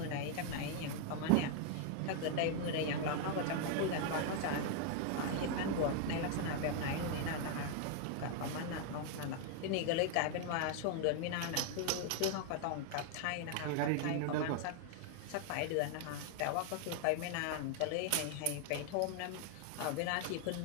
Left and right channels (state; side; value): different; both; correlation 0.00